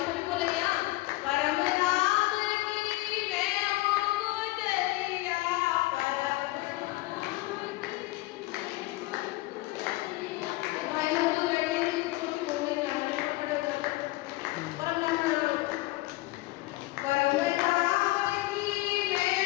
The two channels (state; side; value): quieter; right; 20.0 dB